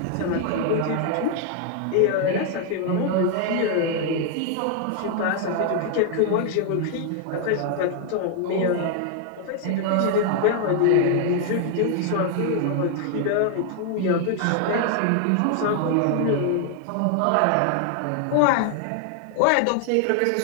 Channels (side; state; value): both; different; correlation 0.00